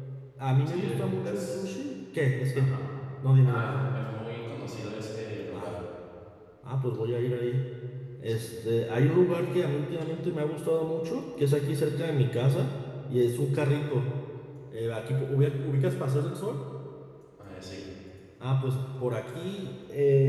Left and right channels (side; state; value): both; identical; correlation 1.00